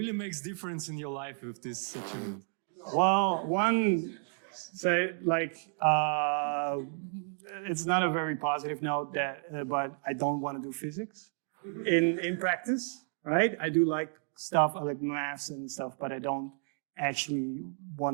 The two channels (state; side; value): silent; left; 56 dB below the other